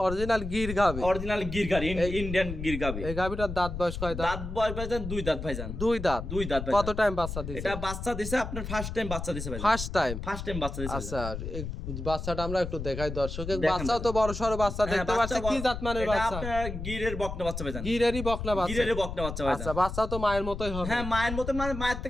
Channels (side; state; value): left; noise; rumble, 6 dB below the sound